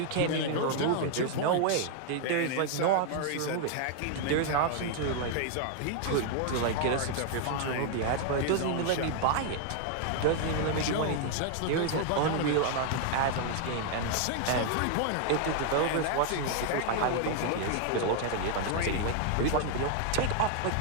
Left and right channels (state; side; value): different; both; correlation 0.00